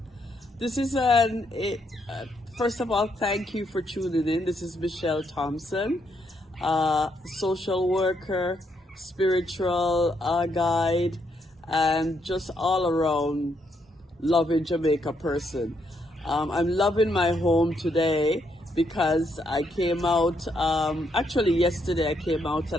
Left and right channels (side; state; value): both; normal; correlation 0.76